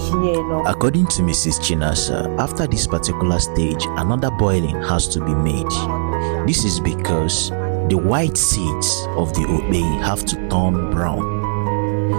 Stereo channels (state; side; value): silent; left; digital silence